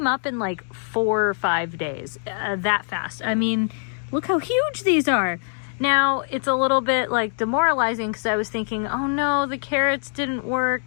up in like 4 or 5 days, that fast. I mean, look how huge these are. Now, it's a little bit like demoralizing because I was thinking, oh no, the carrots didn't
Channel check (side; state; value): right; silent; digital silence